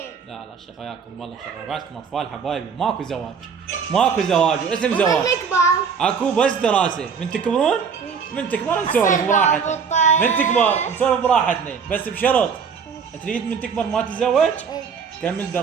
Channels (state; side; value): quieter; left; 6.3 dB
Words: لا شيخ وياكم والله شيخ، بعدكم اطفال حبايبي، ماكو زواج واسم زواج. اكو بس دراسه. من تكبرون من تكبر نسولف براحتنا. من تكبر نسولف براحتنا، بس بشرط تريد من تكبر ما تتزوج كمل